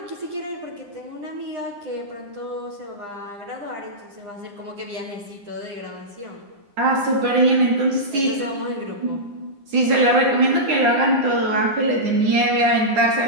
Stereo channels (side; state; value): left; late; 9.8 ms